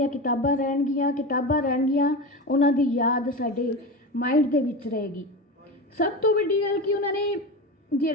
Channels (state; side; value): normal; both; correlation 0.24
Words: ਕਿਤਾਬਾਂ ਰਹਿਣਗੀਆਂ, ਉਹਨਾਂ ਦੀ ਯਾਦ ਸਾਡੇ ਮਾਈਂਡ ਦੇ ਵਿੱਚ ਰਹੇਗੀ। ਸਭ ਤੋਂ ਵੱਡੀ ਗੱਲ ਕਿ ਉਹਨਾਂ ਨੇ